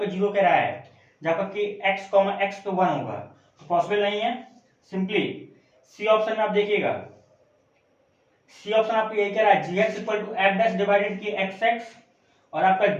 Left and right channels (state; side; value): identical; both; correlation 1.00